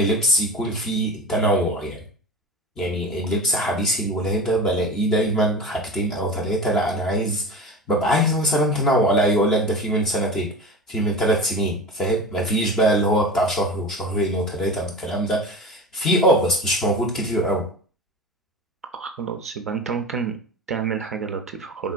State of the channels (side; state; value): both; normal; correlation 0.31